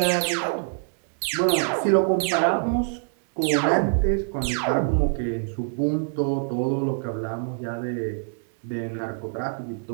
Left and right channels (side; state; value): left; silent; digital silence